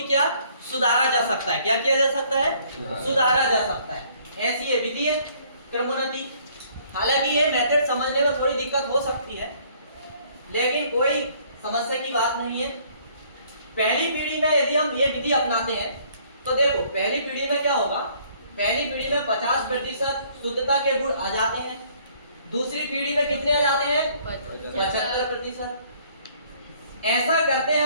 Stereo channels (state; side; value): inverted; both; correlation -0.61